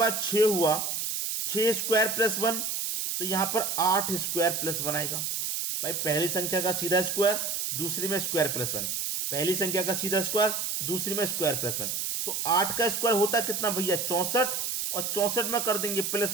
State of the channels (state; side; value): noise; right; hiss, 2 dB below the sound